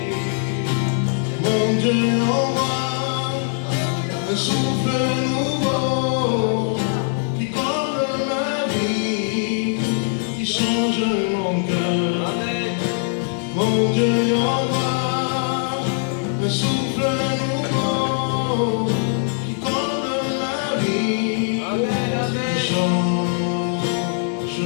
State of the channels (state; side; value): silent; right; 65 dB below the other